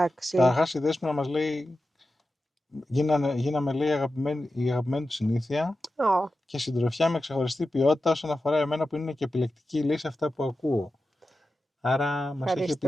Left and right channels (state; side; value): normal; both; correlation 0.92